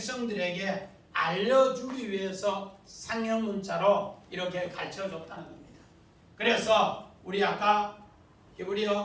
알려주기 위해서 상형 문자로 이렇게 가르쳐줬다는 겁니다. 그래서 우리 아까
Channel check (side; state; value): both; identical; correlation 1.00